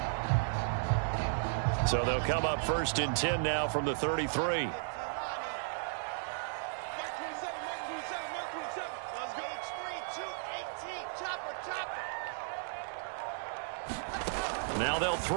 So they'll come up 1st and 10 now from the 33. Now they'll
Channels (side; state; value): left; silent; digital silence